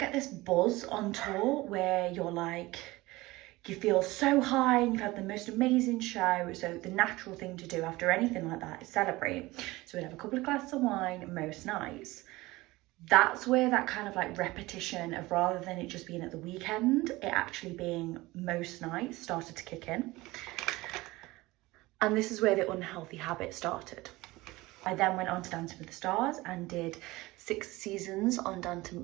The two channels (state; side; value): quieter; left; 20.1 dB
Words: this buzz on tour where you're like, you feel so high and you've had the most amazing show. So the natural thing to do after anything like that is celebrate. So we'd have a couple of glasses of wine most nights. That's where that kind of like repetition of, rather than it just being at the weekend, it actually being most nights, started to kick in. And this is where the unhealthy habit started. I then went on to Dancing with the Stars and did 6 seasons on